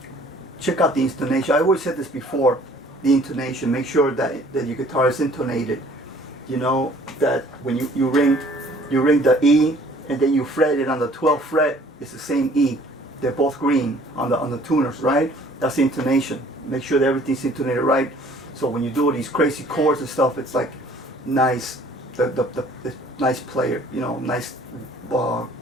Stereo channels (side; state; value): both; normal; correlation 0.55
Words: Check out the intonation. I always said this before. The intonation, make sure that your guitar is intonated. You know, that when you ring the E and then you fret it on the 12th fret, it's the same E. They're both green on the tuners, right? That's the intonation. Make sure that everything's intonated right. So when you do these crazy chords and stuff, it's like nice, the nice player, you know, nice